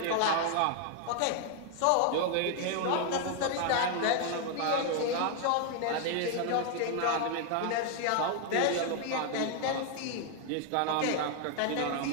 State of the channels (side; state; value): both; different; correlation 0.00